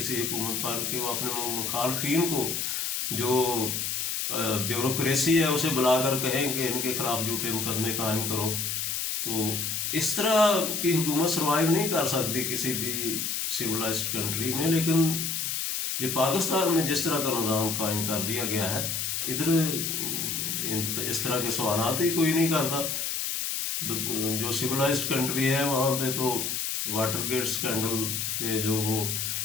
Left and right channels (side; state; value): left; noise; hiss, 1 dB below the sound